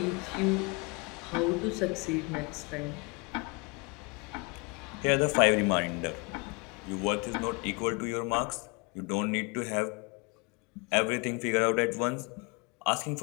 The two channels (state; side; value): quieter; right; 30.3 dB